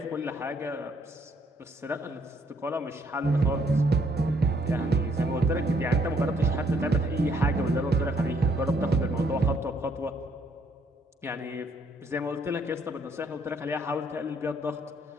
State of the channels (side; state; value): both; normal; correlation 0.69